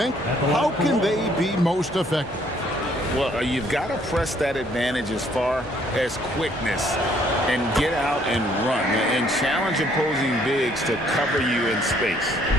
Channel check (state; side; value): normal; both; correlation 0.64